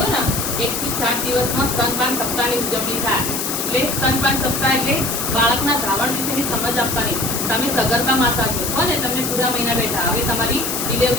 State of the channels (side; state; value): left; noise; hiss, 2 dB below the sound